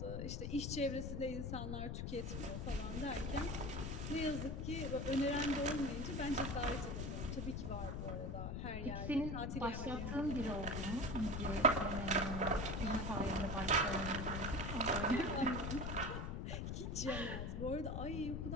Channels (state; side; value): noise; left; rumble, 3 dB below the sound